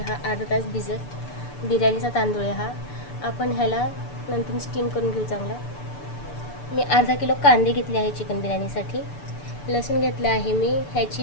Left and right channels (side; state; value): right; late; 6.9 ms